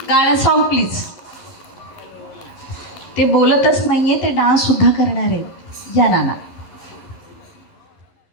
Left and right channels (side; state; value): right; late; 11 ms